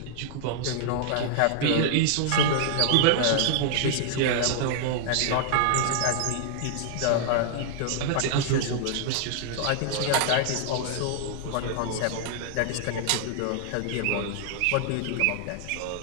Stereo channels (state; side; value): different; both; correlation -0.01